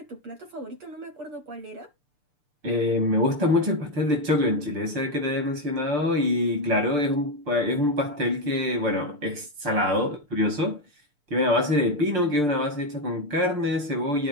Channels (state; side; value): late; left; 6.8 ms